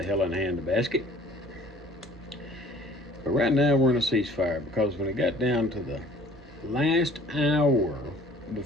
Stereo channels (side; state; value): both; normal; correlation 0.51